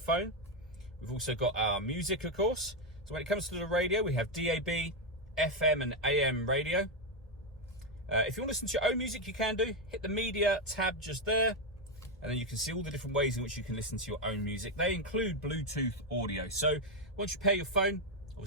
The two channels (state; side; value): normal; both; correlation 0.05